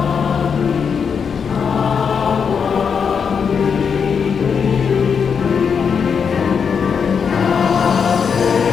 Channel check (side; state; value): right; quieter; 6.5 dB